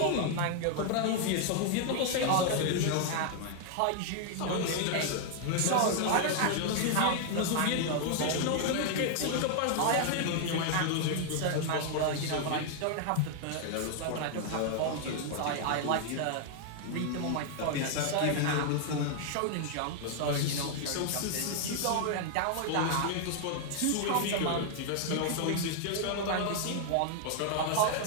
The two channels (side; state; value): both; different; correlation 0.00